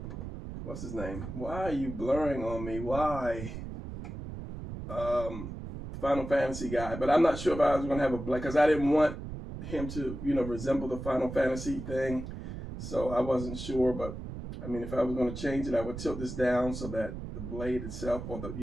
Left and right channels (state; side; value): noise; right; rumble, 8 dB below the sound